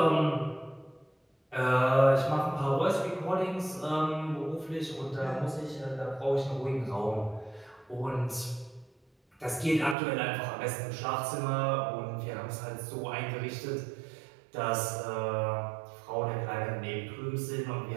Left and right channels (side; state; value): left; drops out; at 10.0 s